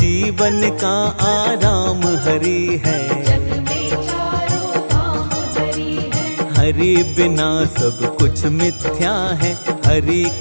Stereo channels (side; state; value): both; inverted; correlation -1.00